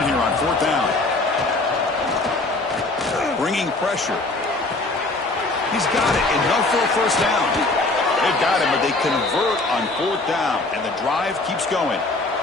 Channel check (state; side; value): quieter; right; 3.1 dB